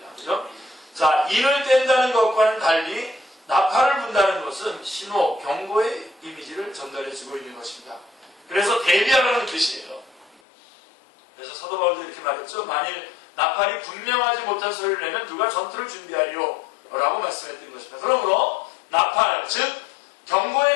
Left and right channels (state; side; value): drops out; right; at 10.4 s